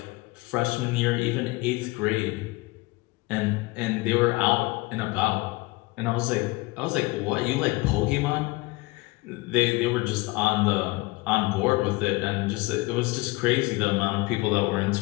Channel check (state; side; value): quieter; right; 22.8 dB